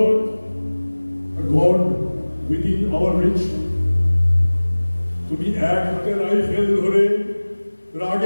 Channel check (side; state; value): both; inverted; correlation -1.00